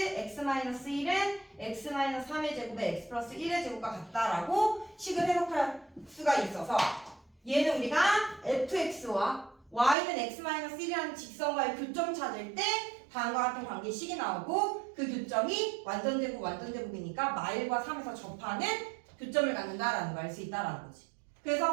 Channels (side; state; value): left; drops out; at 10.0 s